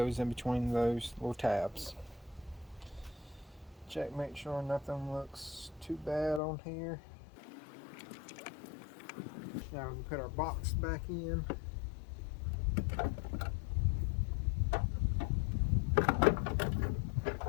in between those little tabs. Check, make sure nothing looks too bad on here. Now we can put our box back in.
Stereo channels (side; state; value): right; drops out; at 6.4 s